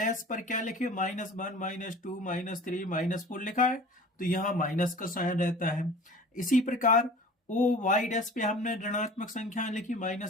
पर क्या लिखे, -1 -2 -3 -4 लिखा है, तो यहाँ माइनस का साइन रहता है। इसी प्रकार ओ वाई डैश पे हमने ऋणात्मक संख्या लिखी,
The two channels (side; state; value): both; normal; correlation 0.42